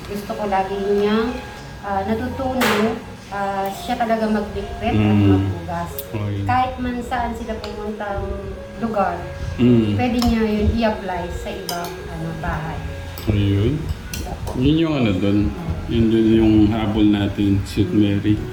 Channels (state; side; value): identical; both; correlation 1.00